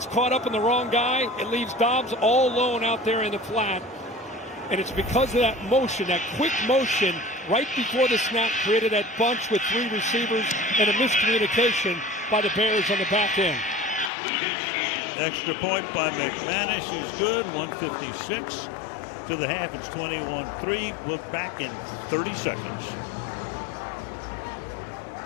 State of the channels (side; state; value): right; drops out; at 14.1 s